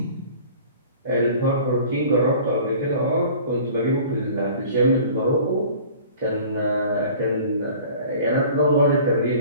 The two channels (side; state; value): both; inverted; correlation -0.46